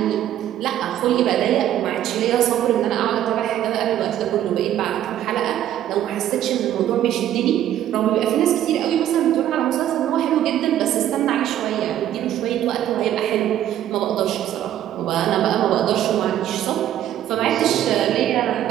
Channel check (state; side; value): quieter; left; 11.7 dB